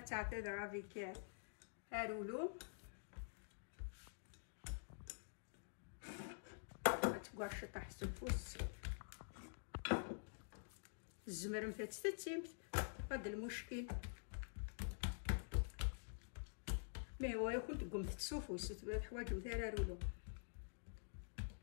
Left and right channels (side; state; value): right; silent; digital silence